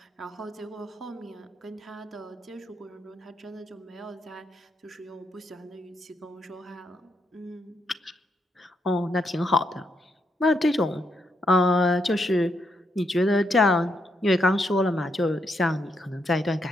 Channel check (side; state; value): both; normal; correlation 0.79